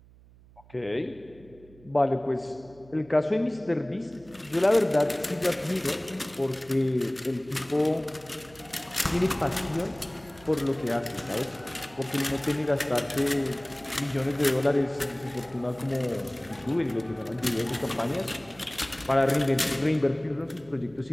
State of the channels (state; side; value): noise; right; hum, 25 dB below the sound